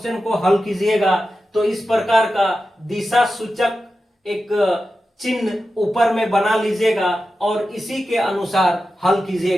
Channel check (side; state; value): both; normal; correlation 0.91